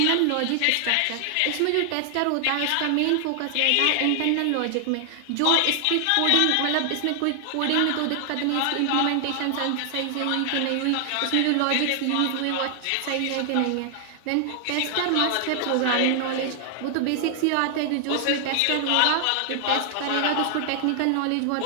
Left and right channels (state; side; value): different; both; correlation 0.00